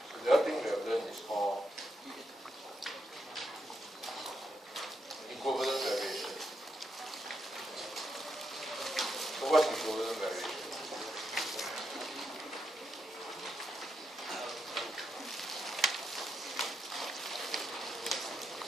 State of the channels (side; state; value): both; normal; correlation 0.82